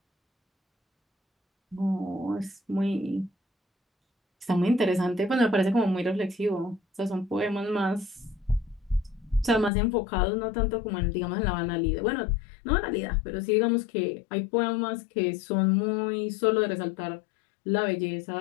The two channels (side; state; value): right; drops out; at 9.7 s